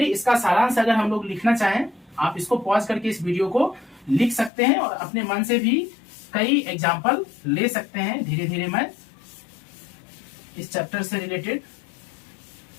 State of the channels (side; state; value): right; drops out; at 4.5 s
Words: इसका सारांश अगर हम लोग लिखना चाहें, आप इसको पॉज करके इस वीडियो को लिख सकते हैं और अपने मन से भी कई एग्जाम्पल ले सकते हैं। धीरे धीरे मैं इस चैप्टर से रिलेटेड